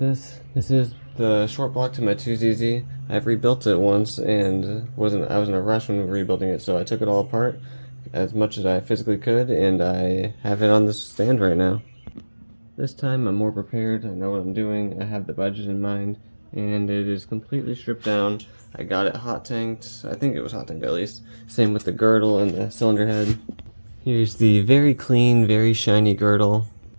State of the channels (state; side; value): inverted; both; correlation -1.00